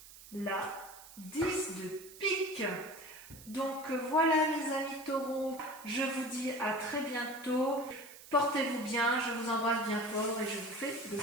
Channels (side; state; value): right; noise; hiss, 18 dB below the sound